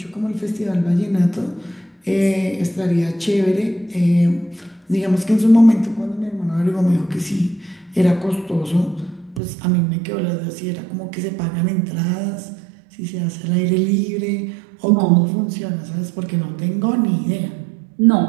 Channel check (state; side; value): drops out; left; at 9.4 s